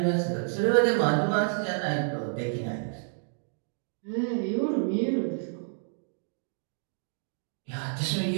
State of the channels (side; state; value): left; silent; digital silence